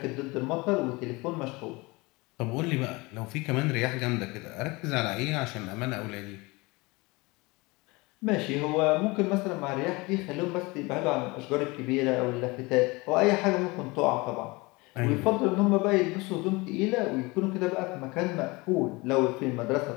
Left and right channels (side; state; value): right; quieter; 24.2 dB